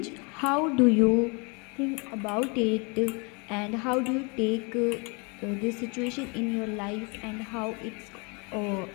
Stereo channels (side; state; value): right; quieter; 31.7 dB